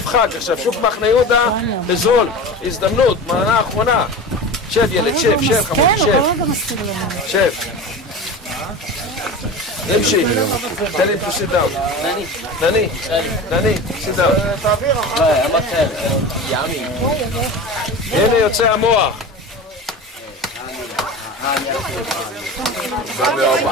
חג. עכשיו, שוק מחנה יהודה בזול, הזדמנות, מנה אחרונה. שב ילד, שב, חמוד, שב. נמשיך. תן לי to sit down. דני, sit down. הנה יוצא המוח.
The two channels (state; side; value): normal; both; correlation 0.31